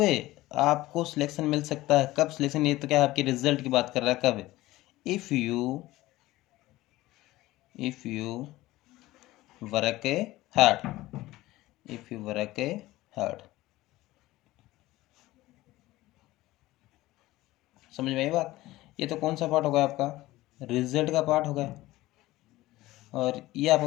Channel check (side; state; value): right; quieter; 17.6 dB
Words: आपको सिलेक्शन मिल सकता है, कब सिलेक्शन, ये तो क्या आपके रिजल्ट की बात कर रहा है, कब, if you work hard, if you work hard. समझ में आई बात। ये तो कौन सा पार्ट हो गया आपका, रिजल्ट का पार्ट हो गया, और ये